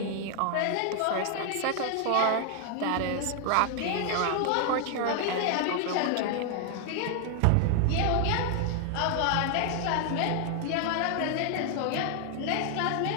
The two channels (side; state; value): both; different; correlation 0.00